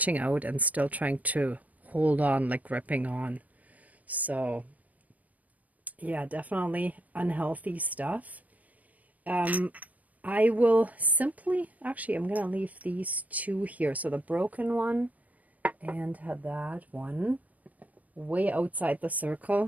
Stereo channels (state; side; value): late; left; 0.075 ms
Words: out and still trying to hold on, like gripping on. So, yeah, definitely unhealthy stuff. I will simply, actually, I'm going to leave these two here. So the broken one and that one way outside the